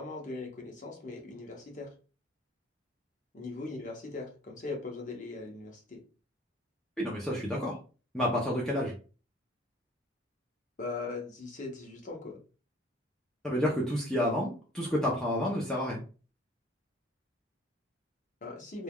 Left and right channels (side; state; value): both; normal; correlation 0.52